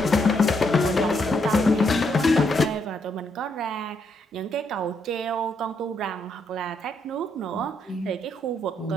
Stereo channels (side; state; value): both; normal; correlation 0.76